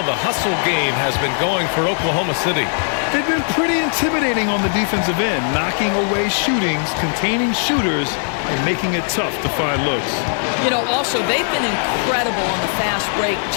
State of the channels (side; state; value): right; silent; 59 dB below the other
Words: the hustle game has been going for Oklahoma City. They've been pretty intimidating on the defensive end, knocking away shootings, containing shooters, and making it tough to find looks. You know, also, they've been incredible on the fast break,